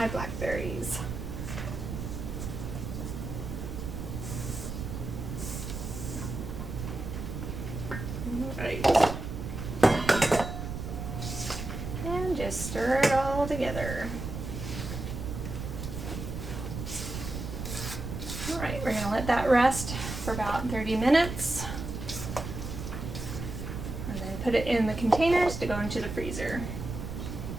blackberries. Alright. And just stir it all together. Alright, we're going to let that rest for about 30 minutes. And then put it in the containers to go into the freezer.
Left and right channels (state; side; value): noise; right; rumble, 6 dB below the sound